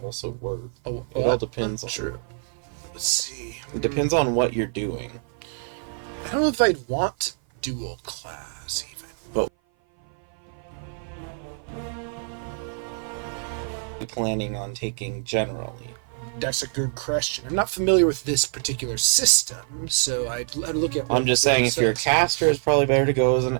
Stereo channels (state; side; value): silent; left; 56 dB below the other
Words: also work. Oh, It all depends on. true. Let's see. It depends on what you're doing. I don't know if I'd want dual class even. Planning on taking generally. That's a good question. I'm not familiar with this particular system, so I'd look at. I'm just saying, if you're a says. caster, it's probably better to go as an